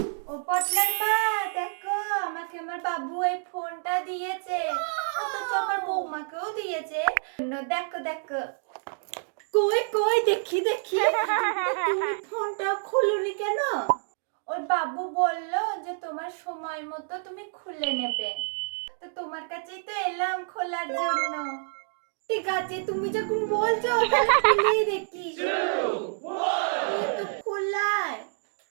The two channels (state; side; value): silent; left; 59 dB below the other